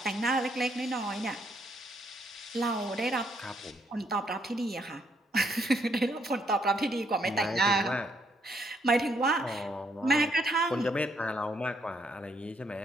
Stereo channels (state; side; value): normal; both; correlation 0.73